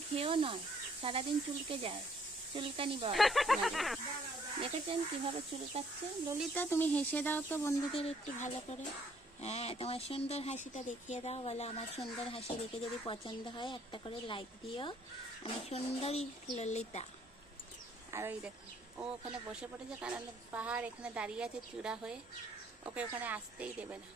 খেয়েও নয়, সারাদিন চুলকে যায়, চুলকানি বল। দেখেছেন কিভাবে চুলকাচ্ছে? ললিতা তুমি হেসে দাও তো বন্ধুদের একটু ভালো করে। হ্যাঁ, তোমার সুন্দর হাসিটা দেখিয়ে দাও, বলো আমার সুন্দর হাসি দেখে যদি পছন্দ হয় একটা করে লাইক দিও। আমি সুন্দরী ললিতা। আর ওই দেখো ও ওখানে বসে পড়েছে, কারণ পাহাড় এখানে দাঁড়িয়ে আছে চূড়া হয়ে, ওকে ওখানে আসতেই দেবে না,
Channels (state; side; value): normal; both; correlation 0.64